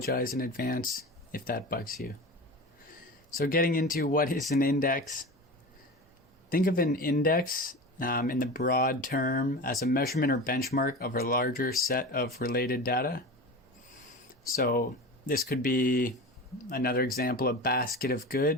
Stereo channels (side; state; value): both; normal; correlation 0.30